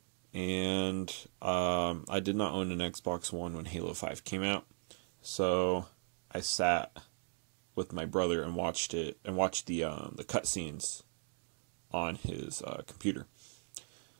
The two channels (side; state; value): left; silent; 53 dB below the other